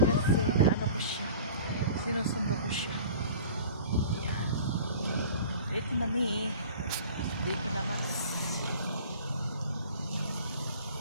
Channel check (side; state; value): both; inverted; correlation -0.43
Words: naano ko siya. Sinusundo ko siya. Yan. Ito na mi. Dito na mas.